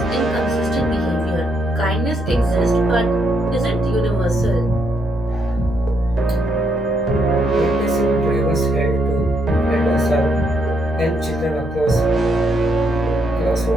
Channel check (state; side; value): noise; right; hum, 18 dB below the sound